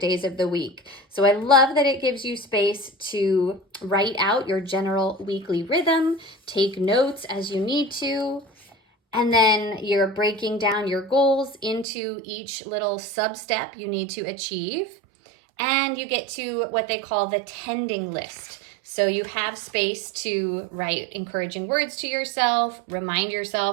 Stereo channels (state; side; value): drops out; left; at 11.9 s